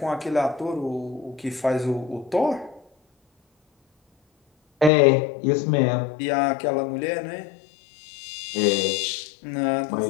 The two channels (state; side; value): drops out; right; at 4.9 s